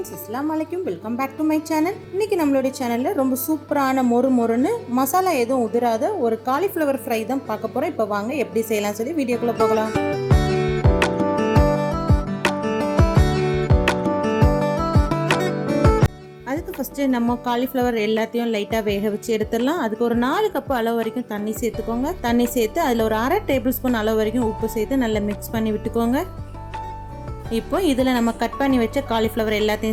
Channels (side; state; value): both; identical; correlation 1.00